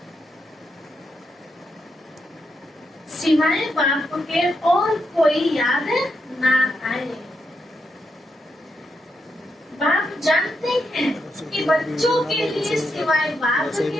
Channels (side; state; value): both; normal; correlation 0.82